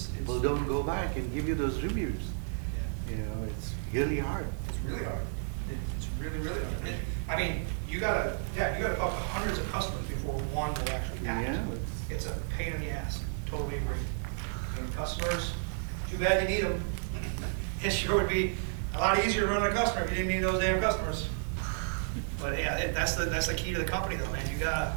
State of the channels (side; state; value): left; silent; 56 dB below the other